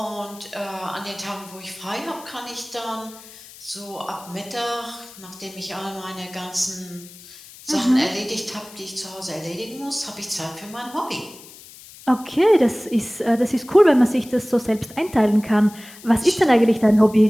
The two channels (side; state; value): left; noise; hiss, 19 dB below the sound